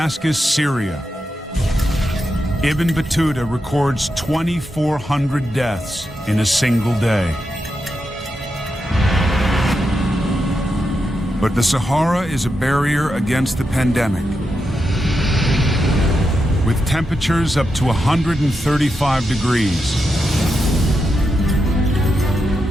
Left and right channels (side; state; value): both; normal; correlation 0.86